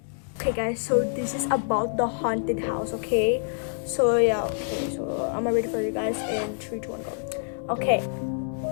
Okay guys, so this is about the haunted house. Okay, so yeah, okay, so I'm ready for you guys in 3, 2, 1, go. Okay,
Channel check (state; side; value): silent; right; digital silence